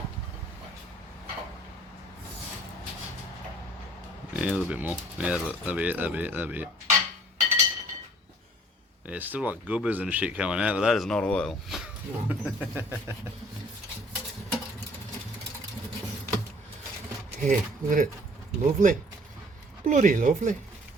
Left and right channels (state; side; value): normal; both; correlation 0.55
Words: Yeah, a little bit more. Yeah, that'll be it. Yeah, it's still like goobers and shit coming out, but that is not oil. Yeah, look at it. Lovely. Bloody lovely.